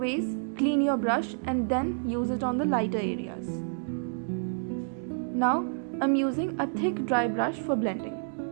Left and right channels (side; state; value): left; silent; digital silence